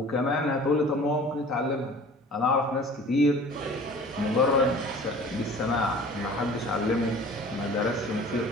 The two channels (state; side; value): normal; both; correlation 0.45